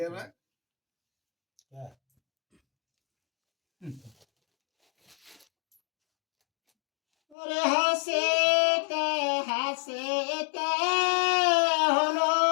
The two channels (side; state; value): right; drops out; at 7.4 s